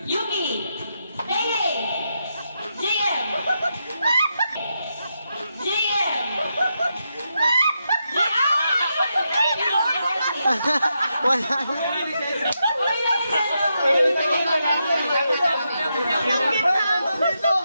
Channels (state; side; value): inverted; both; correlation -0.84